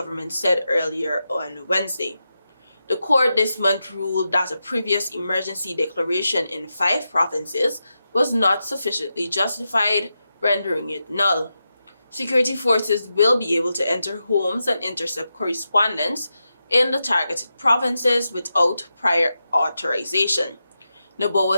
said earlier on Wednesday. The court this month ruled that a previous emergency declaration in 5 provinces was not sufficiently justified, rendering it null. Security forces will be able to enter homes and intercept correspondence in the targeted provinces without prior authorization,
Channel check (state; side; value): inverted; both; correlation -0.89